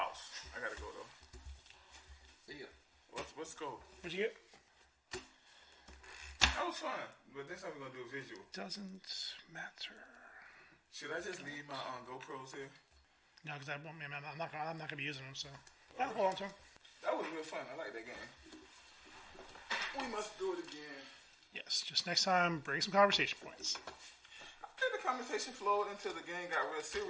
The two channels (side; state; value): both; identical; correlation 1.00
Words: I gotta go though. See ya. Let's go. What'd you get? That was fun, but this time we're gonna do a visual. Doesn't matter. Should I just leave my GoPros here? No, because I'm not gonna be using them. So yeah, hold on to them. That was real fun. I like that game. We must do it again. Yes, just next time, bring some conversation points. I think the conversation flowed until the game got real